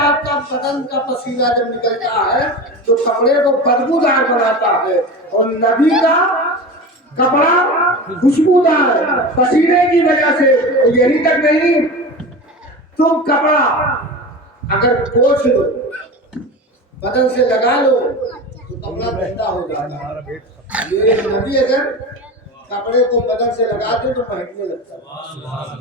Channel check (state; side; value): normal; both; correlation 0.29